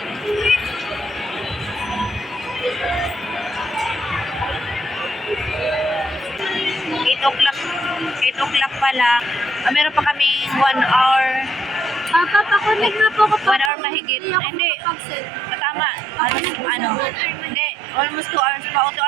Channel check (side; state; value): left; drops out; at 13.7 s